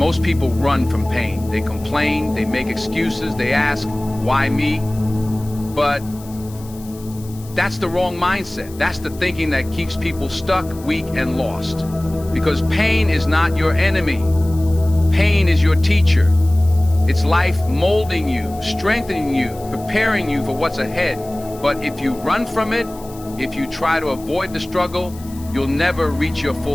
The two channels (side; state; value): left; noise; hiss, 21 dB below the sound